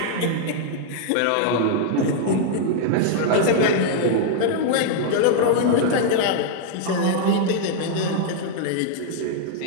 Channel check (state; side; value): different; both; correlation -0.01